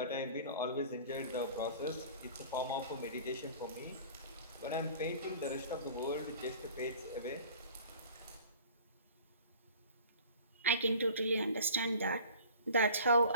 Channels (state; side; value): inverted; both; correlation -0.45